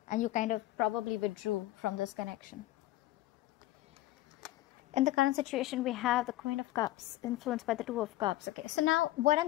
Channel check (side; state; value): right; quieter; 16.2 dB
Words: And you kind of probably withdrew from this connection. In the current situation, we have the Queen of Cups, influenced by the Two of Cups. Okay, so now what